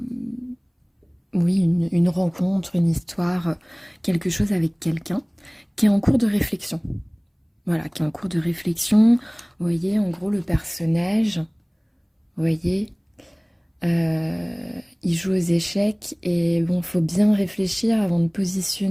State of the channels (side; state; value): both; identical; correlation 1.00